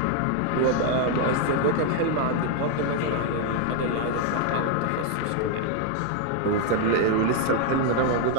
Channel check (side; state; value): both; different; correlation 0.00